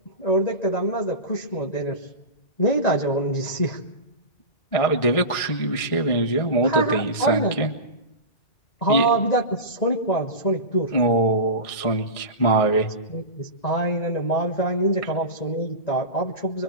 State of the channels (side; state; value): right; late; 1.6 ms